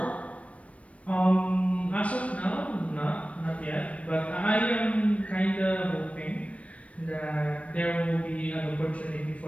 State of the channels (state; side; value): late; right; 0.064 ms